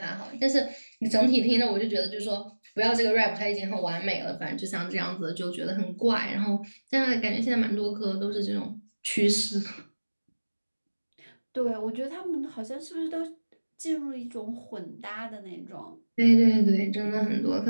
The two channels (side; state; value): both; inverted; correlation -1.00